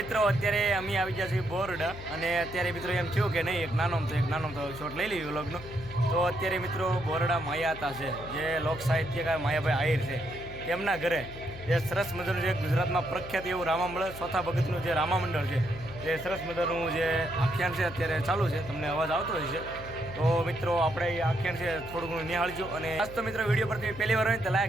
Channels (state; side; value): noise; left; hum, 14 dB below the sound